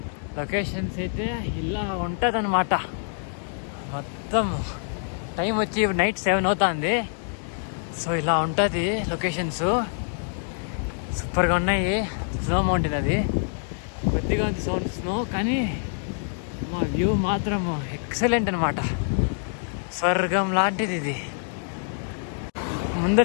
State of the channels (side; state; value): right; silent; 59 dB below the other